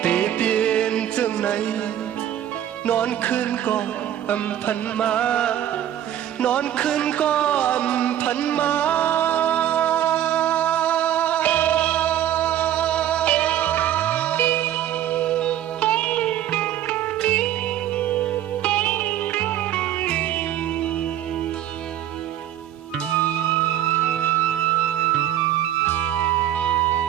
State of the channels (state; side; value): quieter; left; 11.5 dB